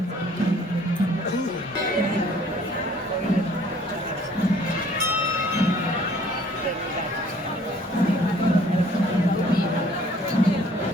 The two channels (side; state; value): both; normal; correlation 0.57